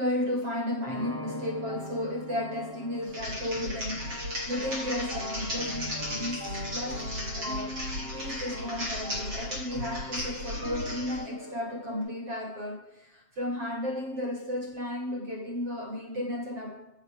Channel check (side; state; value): left; late; 7.4 ms